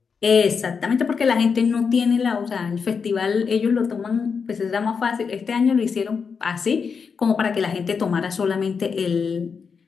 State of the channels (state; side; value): quieter; right; 5.8 dB